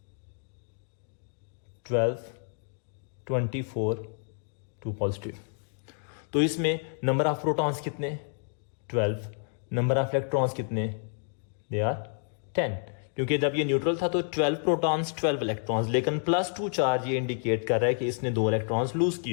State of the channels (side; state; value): right; silent; 58 dB below the other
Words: 12, 24, 2 पॉजिटिव, तो इसमें नंबर ऑफ प्रोटॉन्स कितने, 12, नंबर ऑफ इलेक्ट्रॉन्स कितने, दे आर 10, क्योंकि जब ये न्यूट्रल था तो 12 प्रोटॉन्स 12 इलेक्ट्रॉन्स, लेकिन +2 चार्ज ये इंडिकेट कर रहा है कि इसने 2 इलेक्ट्रॉन्स लूज